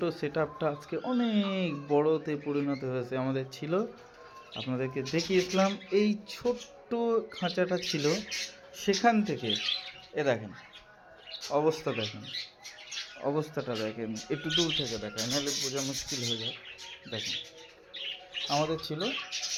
সেটআপটা আজকে অনেক বড়তে পরিণত হয়েছে। আমাদের ছিল, আপনাদেরকে দেখিয়েছিলাম এই ছোট্ট খাঁচাটা ছিল, সেখান থেকে দেখেন অবস্থা, দেখেন অবস্থাটা, দেখেন একটু দূর থেকে দেখেন, নাহলে বোঝা মুশকিল হয়ে যায়। দেখেন আমাদের ছিল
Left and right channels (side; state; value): both; identical; correlation 1.00